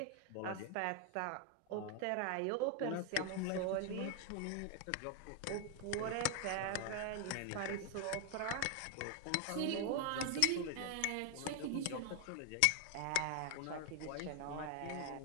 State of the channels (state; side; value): different; both; correlation 0.01